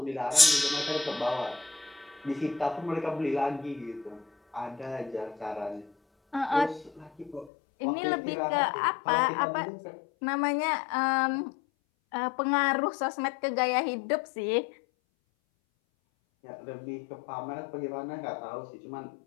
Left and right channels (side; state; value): right; drops out; at 7.5 s